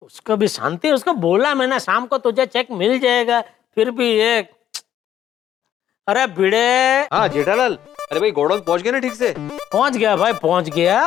उसको भी शांति, उसको बोला मैंने शाम को तुझे चेक मिल जाएगा, फिर भी ये। अरे भिड़े। हाँ जेठालाल, अरे भाई गोडाउन पहुंच गए ना ठीक से? पहुंच गया भाई, पहुंच गया।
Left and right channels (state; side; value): quieter; right; 10.8 dB